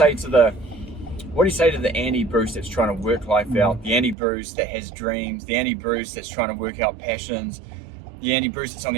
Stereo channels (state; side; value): drops out; left; at 4.2 s